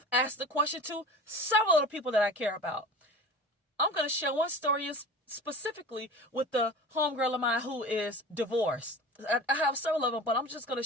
asked the question to several of the people that I care about. I'm going to share one story specifically with the homegirl of mine who is divorced. I have several of them, but I'm just going to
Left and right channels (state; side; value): normal; both; correlation 0.36